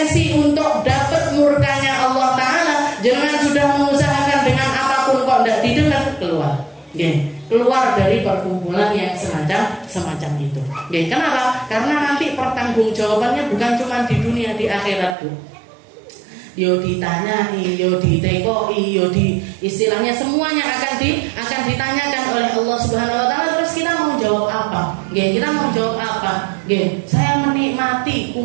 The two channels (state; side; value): drops out; left; at 15.2 s